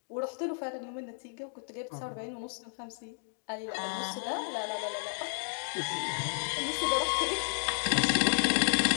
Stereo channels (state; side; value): silent; right; digital silence